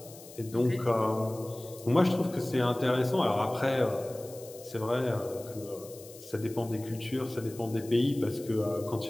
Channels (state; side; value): noise; left; hiss, 18 dB below the sound